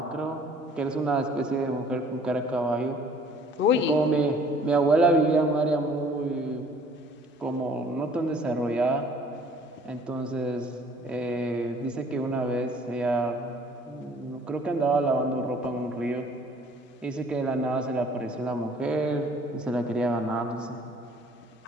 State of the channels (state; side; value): normal; both; correlation 0.55